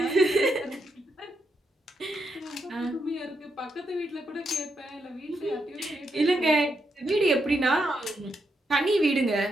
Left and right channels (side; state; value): both; normal; correlation 0.81